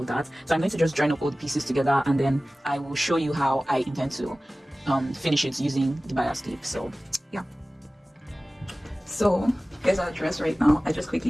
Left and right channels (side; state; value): both; normal; correlation 0.97